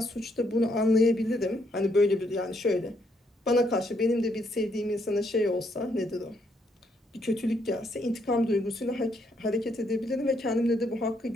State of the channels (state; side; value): normal; both; correlation 0.73